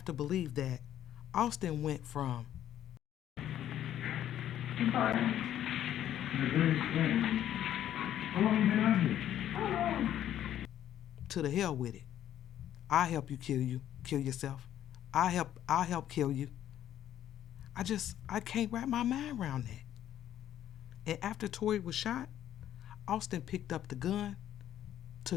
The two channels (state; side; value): quieter; right; 11.4 dB